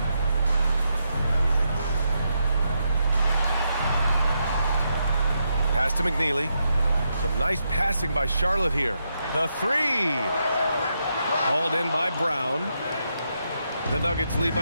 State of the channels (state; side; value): inverted; both; correlation -0.82